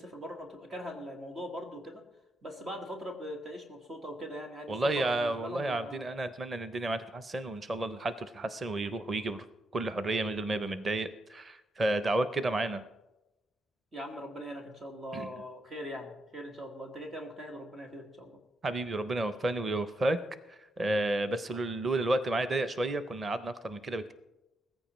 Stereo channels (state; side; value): normal; both; correlation 0.82